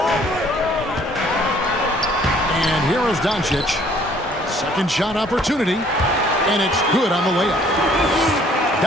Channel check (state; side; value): normal; both; correlation 0.59